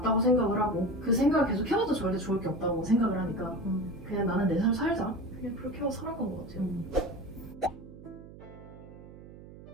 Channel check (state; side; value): noise; right; hum, 17 dB below the sound